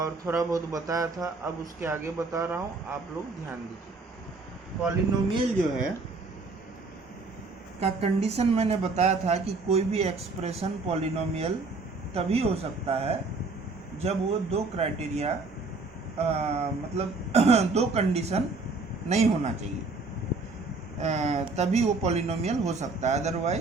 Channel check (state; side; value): quieter; left; 3.7 dB